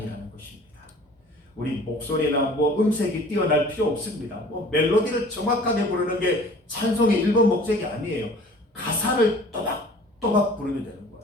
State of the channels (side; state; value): both; normal; correlation 0.47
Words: 것입니다. 우리 목소리나 뭐 음색이 뛰어날 필요 없습니다. 뭐 멜로디를 정확하게 부르는 게 찬송의 1번 목적이 아니에요. 가사를 또박또박 부르면 되는